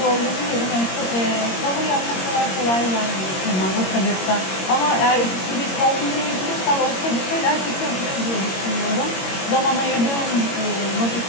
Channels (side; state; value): right; late; 22 ms